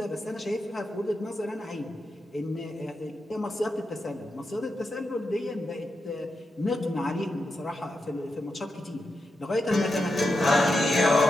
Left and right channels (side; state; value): both; normal; correlation 0.87